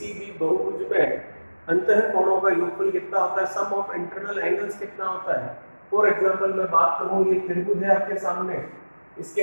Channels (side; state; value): both; inverted; correlation -1.00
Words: भी बहुभुज में अंतःकोणों का योगफल कितना होता है, सम ऑफ इंटरनल एंगल्स कितना होता है। फॉर एग्जांपल मैं बात करूं, ये त्रिभुज है आपके सामने, इसके